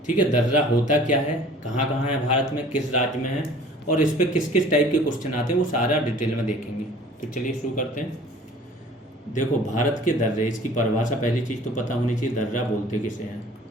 ठीक है, दर्रा होता क्या है, कहाँ कहाँ है भारत में, किस राज्य में है और इस पे किस किस टाइप के क्वेश्चन आते हैं, वो सारा डिटेल में देखेंगे। तो चलिए शुरू करते हैं। देखो, भारत के दर्रे, इसकी परिभाषा पहली चीज़ तो पता होनी चाहिए, दर्रा बोलते किसे हैं।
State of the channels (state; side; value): normal; both; correlation 0.49